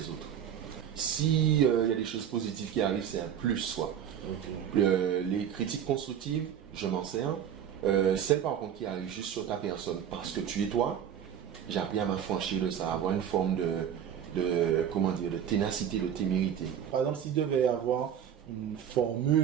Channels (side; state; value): left; quieter; 9.1 dB